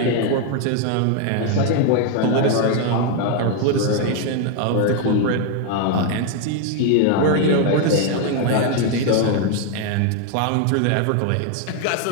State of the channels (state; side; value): different; both; correlation 0.01